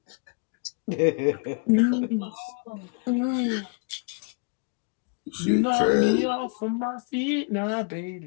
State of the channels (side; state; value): right; quieter; 35.6 dB